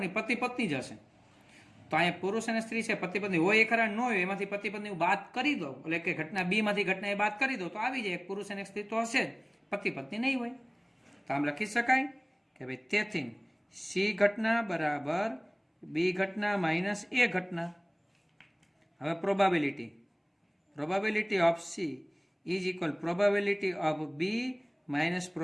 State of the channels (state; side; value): identical; both; correlation 1.00